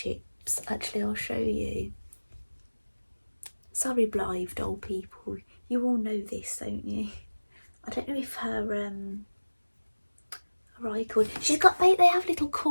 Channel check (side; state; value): both; inverted; correlation -1.00